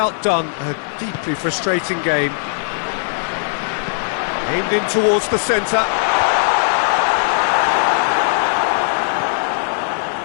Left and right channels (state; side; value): silent; right; 67 dB below the other